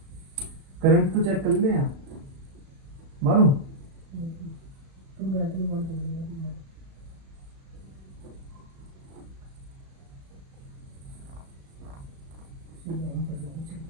करंट तो चेक कर ले यहाँ मारूं।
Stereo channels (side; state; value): left; late; 36 ms